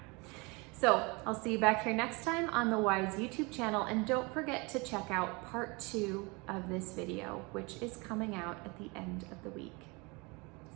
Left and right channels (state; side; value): quieter; left; 27.5 dB